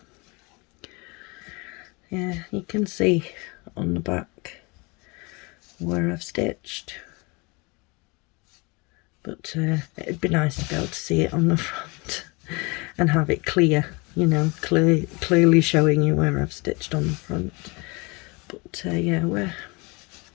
Yeah, you can see on the back where I've stitched, but it'd be nice to be able to see it on the front and have it clear, you know, clearly showing you where I've stitched on the front. But yeah,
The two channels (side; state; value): right; quieter; 27.6 dB